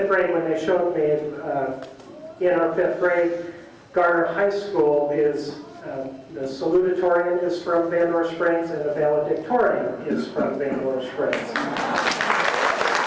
grade. When they showed me in our 5th grade, Garner High School is the salutatorian is from Vandora Springs, and the valedictorian is from Vandora Springs.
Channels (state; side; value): identical; both; correlation 1.00